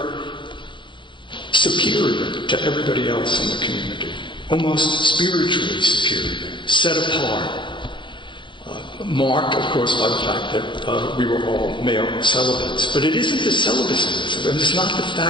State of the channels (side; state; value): right; late; 0.23 ms